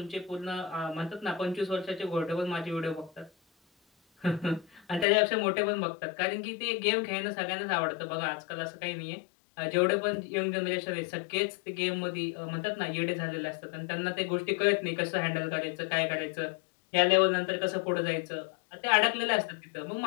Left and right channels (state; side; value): drops out; right; at 5.1 s